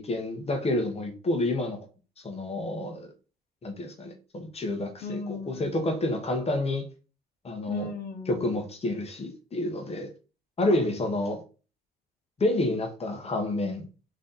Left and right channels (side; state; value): both; normal; correlation 0.51